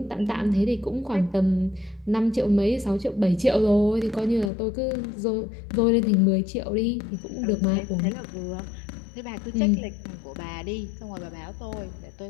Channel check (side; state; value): right; drops out; at 4.5 s